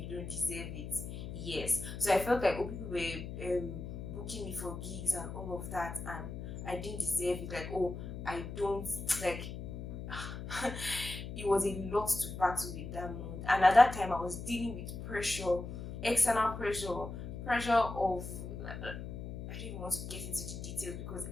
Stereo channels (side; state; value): left; noise; hum, 8 dB below the sound